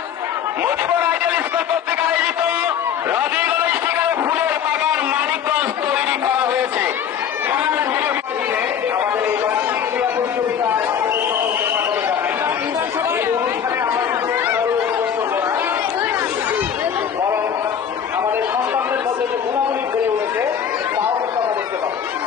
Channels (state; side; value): quieter; right; 8.4 dB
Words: মুজিবুর আইডিয়াল স্কুল কর্তৃক আয়োজিত রজনীগন্ধা স্টিকার ফুলের বাগান মানিকগঞ্জ তৈরি করা হয়েছে। আমাদের এই বার্ষিক ক্রীড়া প্রতিযোগিতায় বরং আমাদের সন্তানদের মধ্যে যে গুণাবলী বেড়ে উঠেছে তাও কিন্তু আমরা দেখতে পাবো।